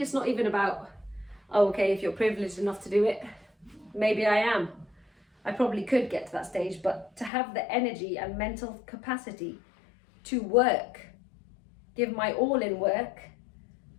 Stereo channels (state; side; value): drops out; right; at 7.3 s